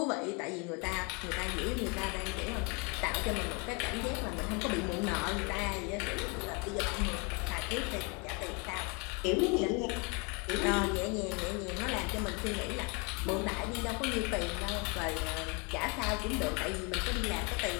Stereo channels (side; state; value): right; quieter; 32.0 dB